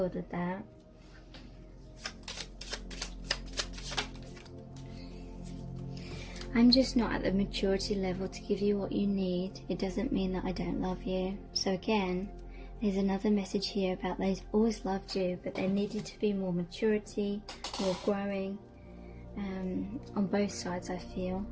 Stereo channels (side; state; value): both; identical; correlation 1.00